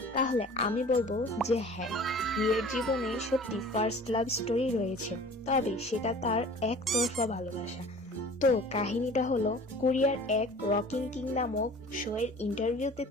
তাহলে আমি বলবো যে হ্যাঁ, ভিয়ের জীবনে সত্যি ফার্স্ট লাভ স্টোরি রয়েছে, তবে সেটা তার একতরফা ভালোবাসা। তো কাহিনীটা হলো, কোরিয়ার এক রকিং কিং নামক শো এর ইন্টারভিউতে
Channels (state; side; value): normal; both; correlation 0.45